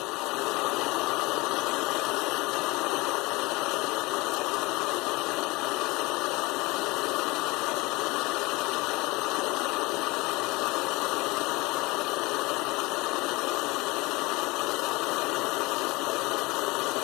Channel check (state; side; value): quieter; right; 23.1 dB